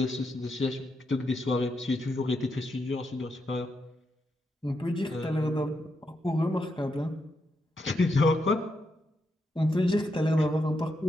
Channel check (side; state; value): both; normal; correlation 0.82